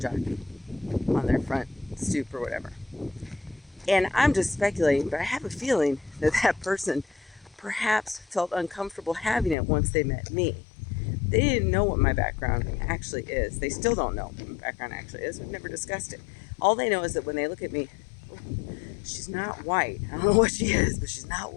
jockey on their front stoop or whatever. And I'm just speculating, but I have a feeling that person perhaps felt uncomfortable having it once they met me. They didn't know what my background actually is. They still don't know what my background actually is. We've never discussed it. All they know is that when they look at me, she's not white. I don't know what she is, but she's not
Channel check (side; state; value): right; drops out; at 9.6 s